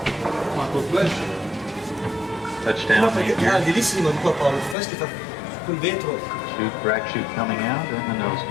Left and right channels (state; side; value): drops out; right; at 4.8 s